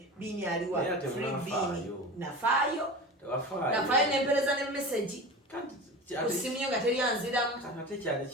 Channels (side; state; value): both; normal; correlation 0.31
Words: aliwa free biini nafaayo nempereza ne message kusimu nga teri anziramu